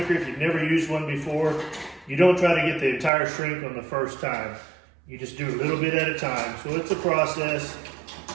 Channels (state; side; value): drops out; left; at 3.1 s